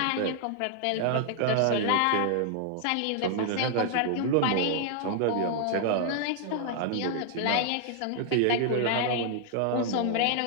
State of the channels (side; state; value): both; different; correlation 0.00